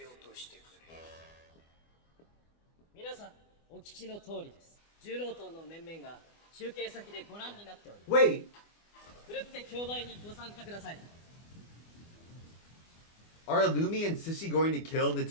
落としてくれ。皆さんお聞きの通りです。重労党の面々が中継先でご覧になっております。 Wait, ふるって競売にご参加ください。 are Illumi and Sissy going to kill the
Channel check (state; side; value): late; right; 24 ms